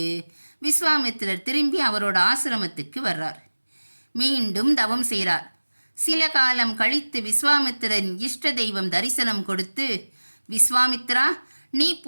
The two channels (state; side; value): inverted; both; correlation -1.00